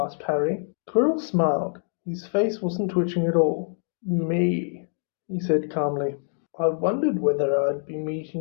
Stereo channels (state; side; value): silent; right; digital silence